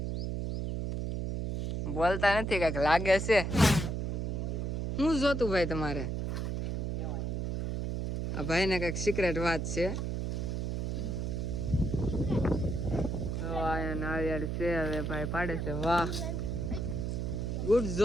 બોલતા નથી, કઈક લાગે છે. શું જોતું ભાઈ તમારે? આ ભાઈ ને કઈક સિક્રેટ વાત છે. નાળિયેર છે, હવે ભાઈ પાડે છે. વાહ, ગુડ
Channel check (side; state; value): right; noise; hum, 1 dB below the sound